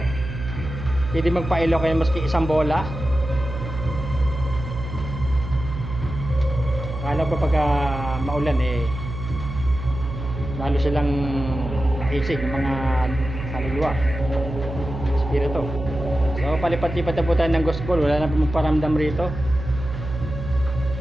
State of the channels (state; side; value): noise; right; hum, 8 dB below the sound